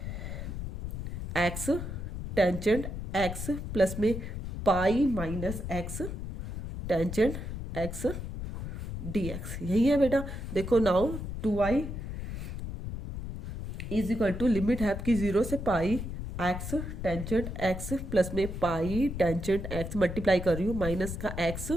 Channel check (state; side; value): noise; left; rumble, 6 dB below the sound